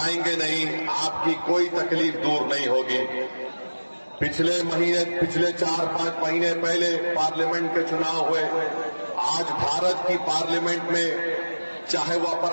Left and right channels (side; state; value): both; inverted; correlation -1.00